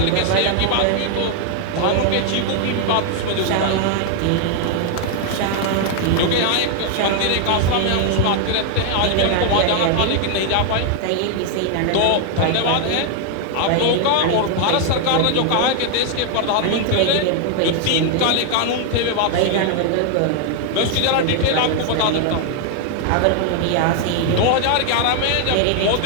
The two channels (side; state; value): both; different; correlation 0.00